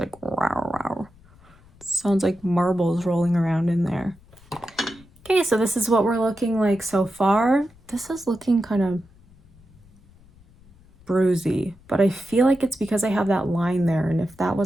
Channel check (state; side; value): noise; left; rumble, 27 dB below the sound